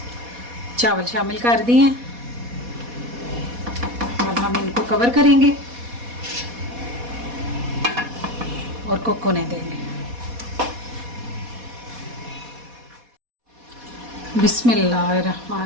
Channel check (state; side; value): late; left; 4.1 ms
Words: चावल शामिल कर दिए हैं। अब हम इनको कवर करेंगे और कुक होने देंगे।